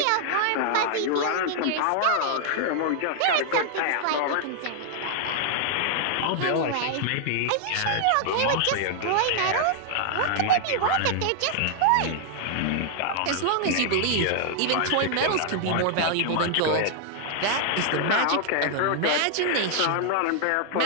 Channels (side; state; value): both; different; correlation 0.00